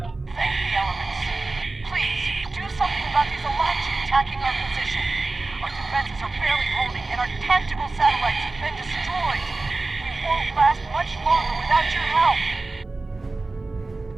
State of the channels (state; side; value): quieter; left; 3.4 dB